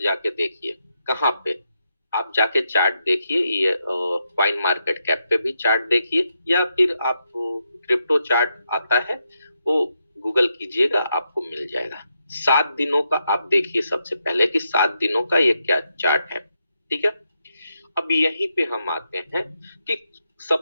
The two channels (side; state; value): both; inverted; correlation -0.83